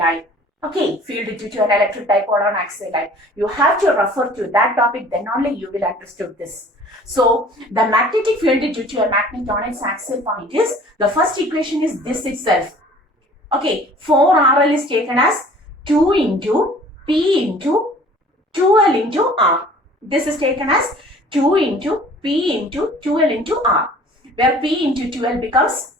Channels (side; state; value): both; normal; correlation 0.50